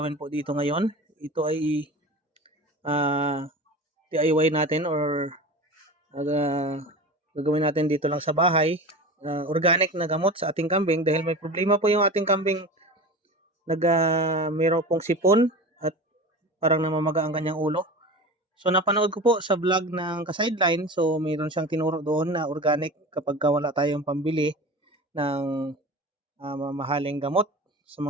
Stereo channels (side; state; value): both; normal; correlation 0.32